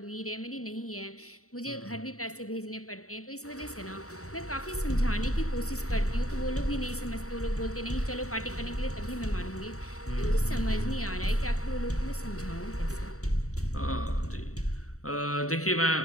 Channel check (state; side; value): late; right; 0.65 ms